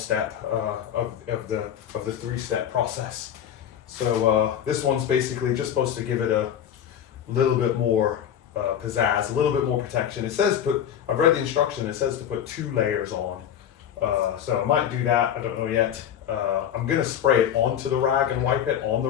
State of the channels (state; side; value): quieter; right; 9.5 dB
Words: of the 3-step process. So this one's basically just supposed to give it a little bit more pizzazz, a little bit more protection. It says I've read the instruction, it says to put 2 layers on. So I might do that, I don't know yet. I'm gonna spray it onto the rag and wipe it on the